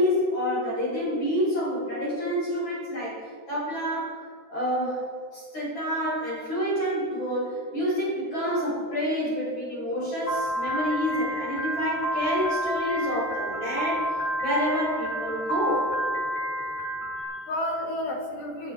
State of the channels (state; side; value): late; right; 13 ms